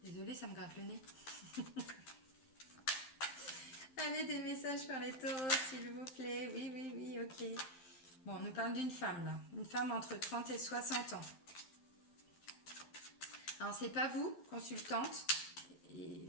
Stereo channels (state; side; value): late; right; 12 ms